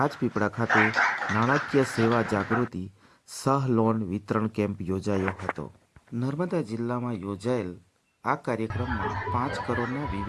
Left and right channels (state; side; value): identical; both; correlation 1.00